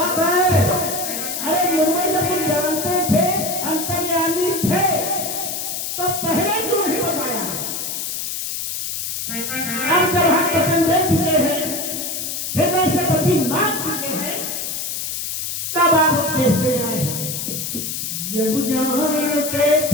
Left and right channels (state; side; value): noise; left; hiss, 4 dB below the sound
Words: है? अरे मुनिवर जब तुम जानते थे अंतर्यामी थे तो पहले क्यों नहीं बताया? अब जब हम वचन दे चुके हैं, हृदय से पति मांग चुके हैं, तब आप देखते आए हैं। जब जानते